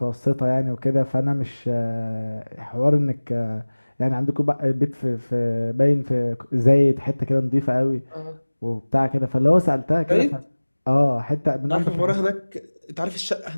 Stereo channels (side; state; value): both; inverted; correlation -1.00